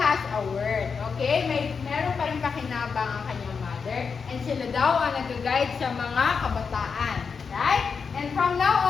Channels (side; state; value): right; quieter; 5.6 dB